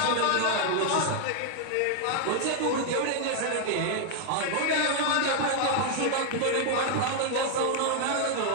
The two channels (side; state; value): both; different; correlation 0.00